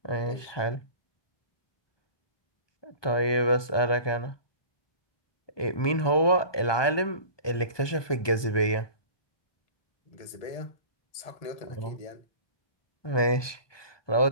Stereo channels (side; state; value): right; late; 1.2 ms